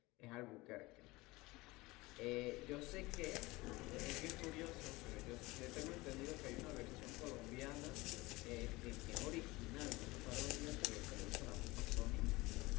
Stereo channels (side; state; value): right; quieter; 21.5 dB